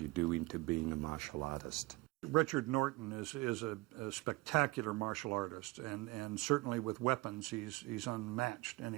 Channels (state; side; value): quieter; left; 21.5 dB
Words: you do into being a martial artist. Richard Norton is a spectacular martial artist, and certainly with weapons, he's unmatched